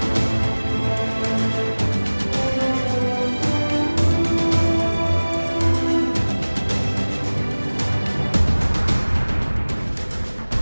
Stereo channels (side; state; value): both; inverted; correlation -1.00